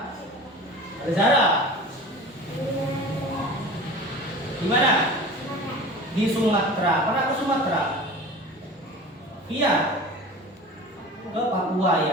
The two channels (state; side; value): normal; both; correlation 0.38